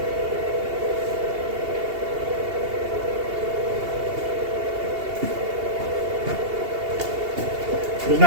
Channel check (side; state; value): left; late; 2.8 ms